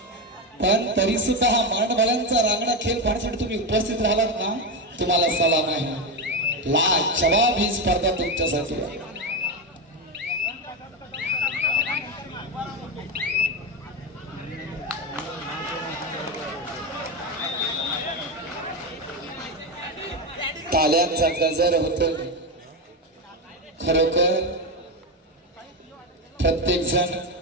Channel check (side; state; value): both; normal; correlation 0.13